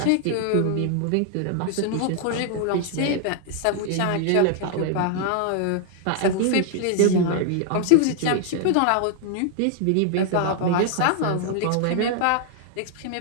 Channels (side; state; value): both; different; correlation 0.00